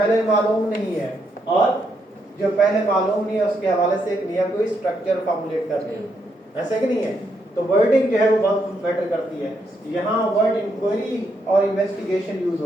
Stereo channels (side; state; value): both; normal; correlation 0.78